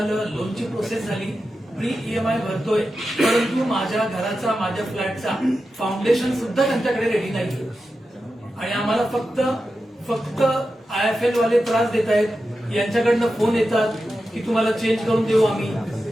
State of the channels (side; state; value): both; normal; correlation 0.91